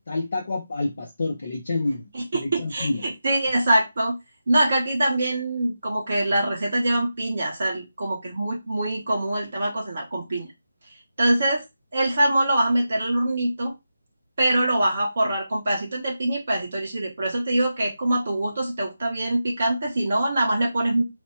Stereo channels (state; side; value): inverted; both; correlation -0.90